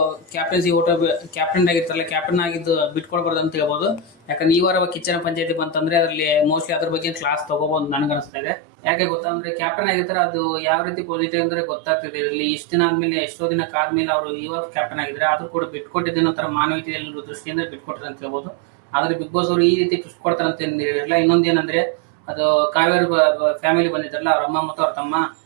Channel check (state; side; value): drops out; left; at 8.3 s